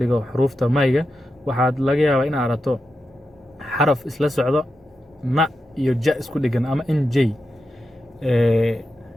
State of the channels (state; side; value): normal; both; correlation 0.88